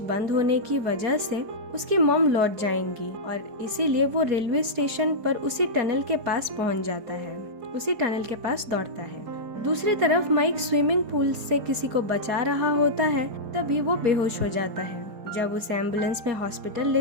बंद होने की वजह से उसकी मॉम लौट जाएंगी, और इसीलिए वो रेलवे स्टेशन पर उसी टनल के पास पहुंच जाता है, उसी टनल के पास दौड़ता है। दूसरी तरफ माइक स्विमिंग पूल से किसी को बचा रहा होता है, तभी वो बेहोश हो जाता है। जब उसे एम्बुलेंस में हॉस्पिटल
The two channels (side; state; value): left; late; 4.7 ms